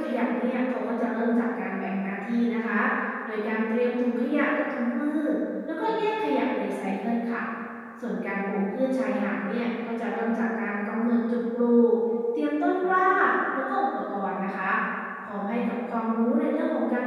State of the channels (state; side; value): identical; both; correlation 1.00